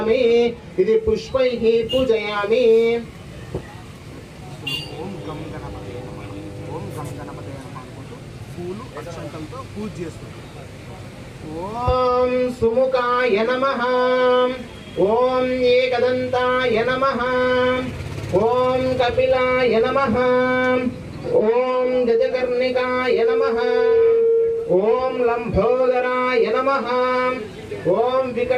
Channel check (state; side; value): identical; both; correlation 1.00